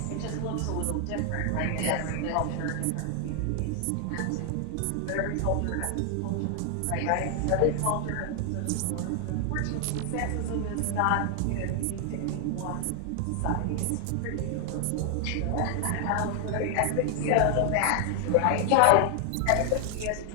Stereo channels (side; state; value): both; different; correlation 0.00